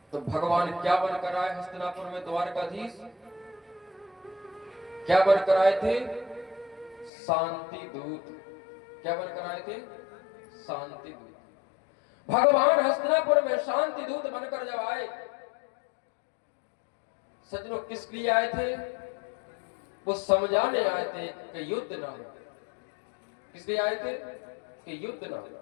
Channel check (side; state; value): right; drops out; at 7.1 s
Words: तो भगवान क्या बनकर आए हस्तिनापुर में? द्वारकाधीश। क्या बनकर आए थे? शांति दूत। क्या बनकर आए थे? शांति दूत। भगवान हस्तिनापुर में शांति दूत बनकर जब आए, सज्जनों किस लिए आए थे? वो समझाने आए थे कि युद्ध ना हो। किस लिए आए थे? कि युद्ध ना हो।